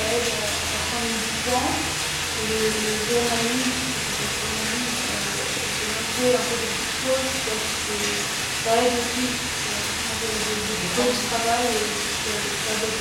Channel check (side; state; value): both; identical; correlation 1.00